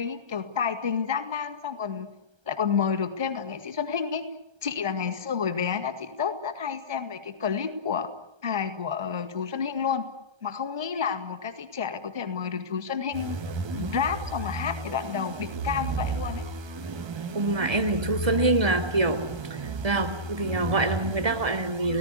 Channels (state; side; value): late; left; 1.3 ms